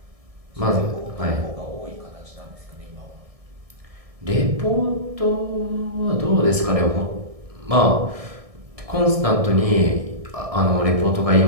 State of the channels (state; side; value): late; left; 1.6 ms